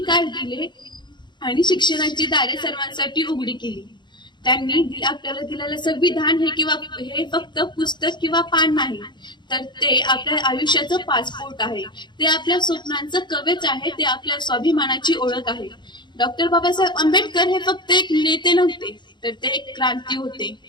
दिले आणि शिक्षणाची दारे सर्वांसाठी उघडी केली. त्यांनी आपल्याला दिलेलं संविधान हे फक्त पुस्तक किंवा पान नाही, तर ते आपल्या आयुष्याचं पासपोर्ट आहे. ते आपल्या स्वप्नांचं कवच आहे. ते आपल्या स्वाभिमानाची ओळख आहे. डॉक्टर बाबासाहेब आंबेडकर हे फक्त एक नेते नव्हते, तर ते एक क्रांती होते.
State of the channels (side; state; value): right; late; 0.22 ms